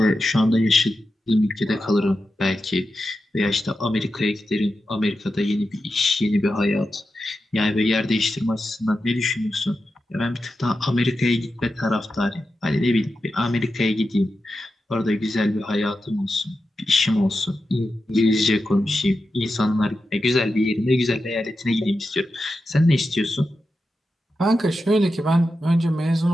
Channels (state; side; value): normal; both; correlation 0.90